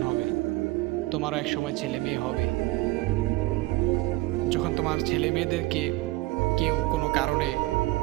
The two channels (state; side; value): quieter; left; 20.0 dB